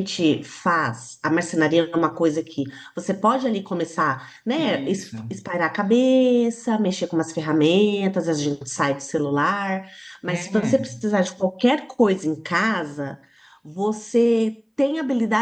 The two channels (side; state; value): both; identical; correlation 1.00